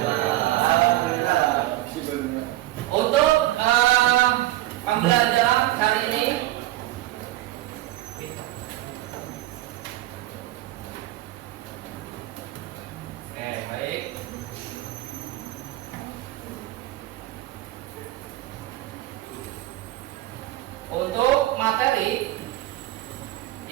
Untuk pembelajaran hari ini oke, baik. Untuk materi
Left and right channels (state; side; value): quieter; left; 16.0 dB